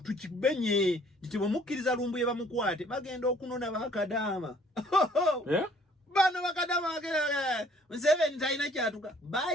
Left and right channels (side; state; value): both; normal; correlation 0.58